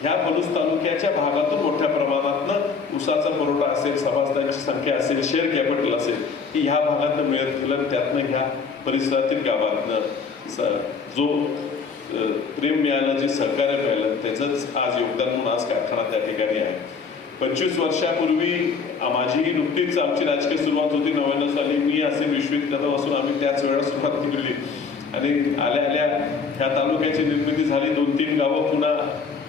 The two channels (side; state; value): right; quieter; 5.2 dB